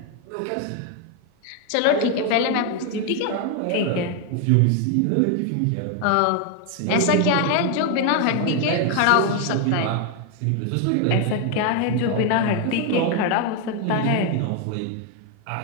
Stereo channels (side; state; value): both; different; correlation 0.01